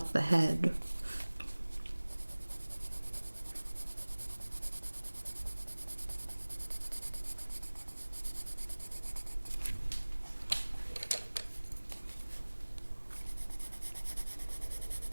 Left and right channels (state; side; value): inverted; both; correlation -1.00